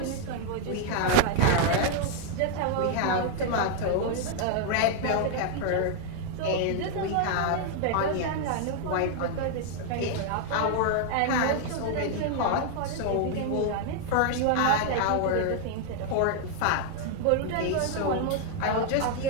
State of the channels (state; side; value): different; both; correlation 0.00